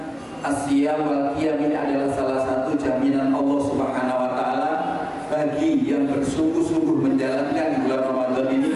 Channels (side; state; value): both; identical; correlation 1.00